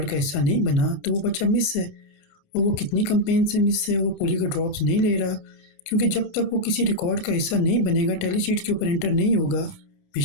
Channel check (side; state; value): right; late; 29 ms